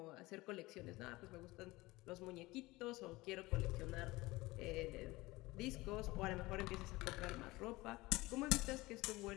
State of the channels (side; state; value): right; quieter; 20.5 dB